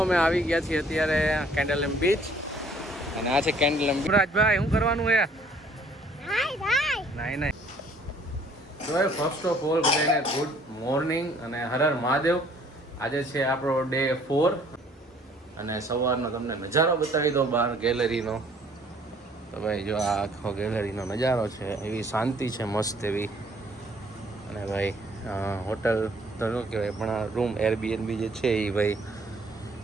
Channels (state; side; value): normal; both; correlation 0.59